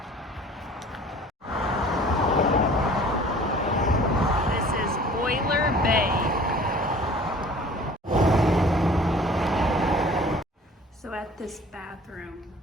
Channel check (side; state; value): both; normal; correlation 0.48